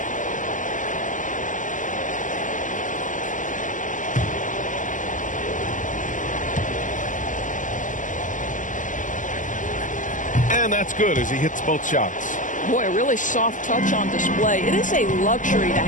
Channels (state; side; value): late; right; 0.37 ms